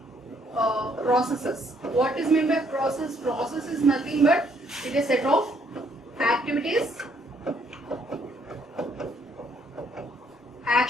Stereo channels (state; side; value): normal; both; correlation 0.68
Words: processes. What is meant by process? Process is nothing but it is a set of activities,